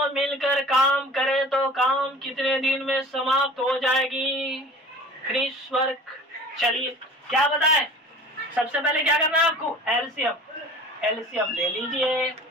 मिलकर काम करें तो काम कितने दिन में समाप्त हो जाएगी? Finish work. चलिए क्या बताएं? सबसे पहले क्या करना है आपको? एलसीएम। एलसीएम ले लीजिए,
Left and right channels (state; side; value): normal; both; correlation 0.43